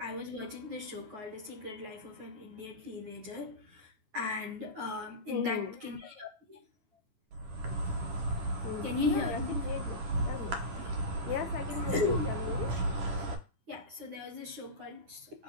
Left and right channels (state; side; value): late; left; 9.5 ms